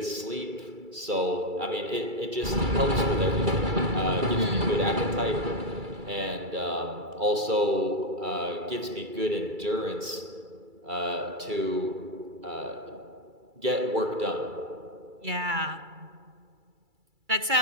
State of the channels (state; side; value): late; left; 2.3 ms